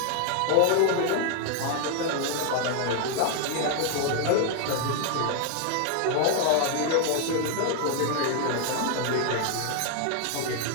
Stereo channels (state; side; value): different; both; correlation 0.00